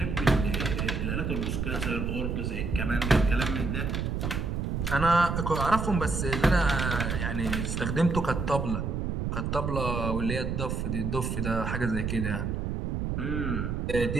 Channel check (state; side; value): noise; right; rumble, 1 dB below the sound